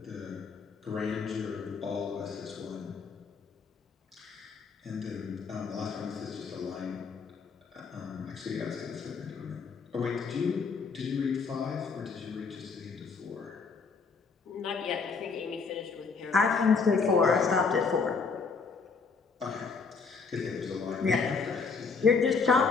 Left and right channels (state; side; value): quieter; right; 5.0 dB